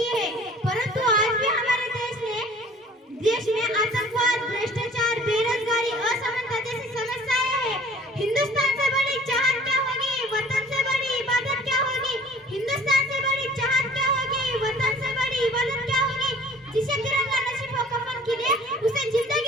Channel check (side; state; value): both; normal; correlation 0.50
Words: है, परंतु आज भी हमारे देश में आतंकवाद, भ्रष्टाचार, बेरोजगारी, असमानता जैसी समस्याएं हैं। हिंदुस्तान से बड़ी चाहत क्या होगी, वतन से बड़ी इबादत क्या होगी। हिंदुस्तान से बड़ी चाहत क्या होगी, वतन से बड़ी इबादत क्या होगी। जिसे तिरंगा नसीब हो कफन के लिए, उसे